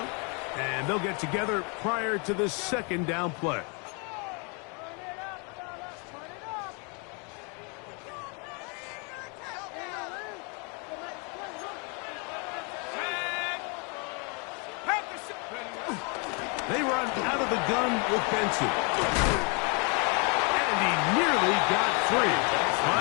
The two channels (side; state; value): right; quieter; 34.2 dB